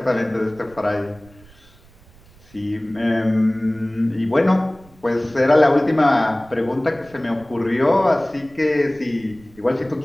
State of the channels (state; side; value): noise; right; rumble, 26 dB below the sound